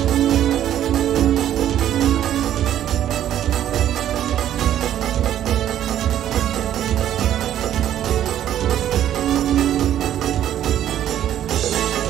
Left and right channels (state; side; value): quieter; left; 11.2 dB